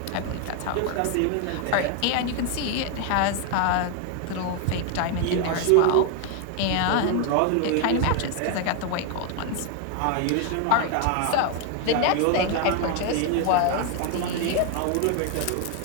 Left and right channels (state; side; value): different; both; correlation 0.01